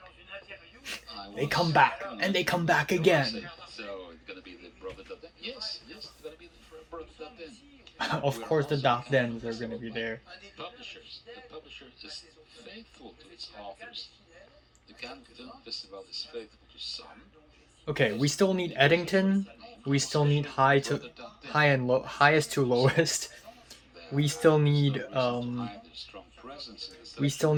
They come back, and they come back again. So it's gonna be the brother Dardenne. Yes, it's gonna be the brother Dardenne. Of course, the Dardennes are gonna be there. The publisher is faithful to its authors. The Cannes Film Festival is faithful to some. Okay, we still need Eddington. We still need highest to lowest. We still need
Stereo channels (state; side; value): identical; both; correlation 1.00